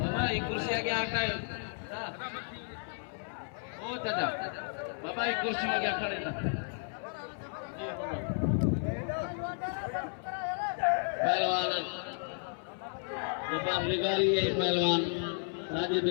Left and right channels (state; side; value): silent; right; 56 dB below the other